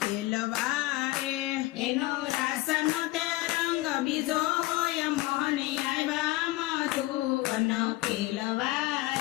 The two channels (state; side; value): quieter; right; 19.3 dB